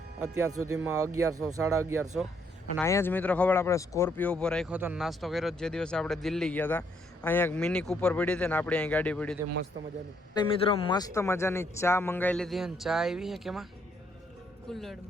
અત્યાર સુધીમાં 1100 1150. અને અહીંયા જ મિત્રો ખબર આપણે સ્કોર્પિયો ઉપર રાખ્યો હતો નાસ્તો કર્યો જે દિવસે આપણે દિલ્હી ગયા હતા. અહીંયા એક મિની કૂપર પડી હતી ને આપણે અહીં ગાડી પડી હતી મસ્ત મજાની. મિત્રો મસ્ત મજાની ચા મંગાવી લીધી અને ચા આવી છે કેમાં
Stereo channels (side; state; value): both; normal; correlation 0.71